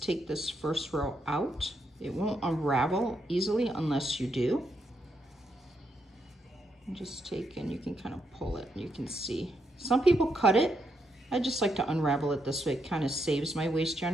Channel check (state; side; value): normal; both; correlation 0.79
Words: take this first row out. It won't unravel easily unless you do. And just take, and you can kind of pull it, and you can see. Some people cut it. I just like to unravel it this way. It kind of saves my waste